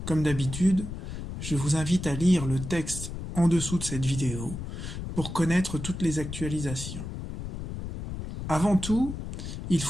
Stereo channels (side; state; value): left; noise; rumble, 7 dB below the sound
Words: Comme d'habitude, je vous invite à lire le texte en dessous de cette vidéo pour connaître toutes les actualisations. Avant tout, il